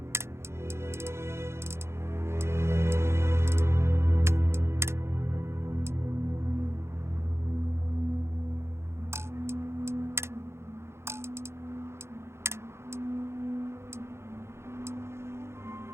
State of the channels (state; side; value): late; left; 0.13 ms